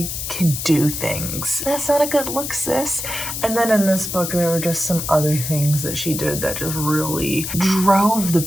can do things. That's not a good look, sis. And then in this book, there were just some other things that she did that just really drove the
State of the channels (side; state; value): left; noise; hiss, 5 dB below the sound